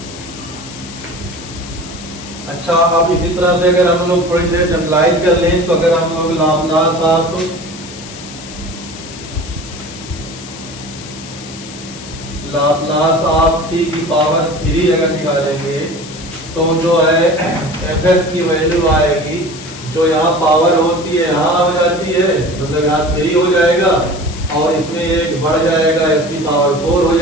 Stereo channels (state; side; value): noise; left; hiss, 15 dB below the sound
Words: अच्छा, अब इसी तरह से अगर हम लोग थोड़ी देर जनरलाइज कर लें तो अगर हम लोग लाप्लास ऑफ t की पावर 3 अगर निकालेंगे तो जो है fs की वैल्यू आएगी, जो यहाँ पावर होती है यहाँ हो जाती है, मतलब यहाँ 3 हो जाएगा और इसमें एक बढ़ जाएगा, इसकी पावर 4 हो